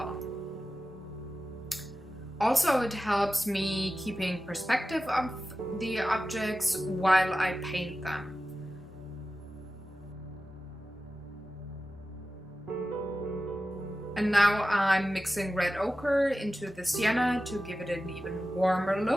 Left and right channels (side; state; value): both; normal; correlation 0.94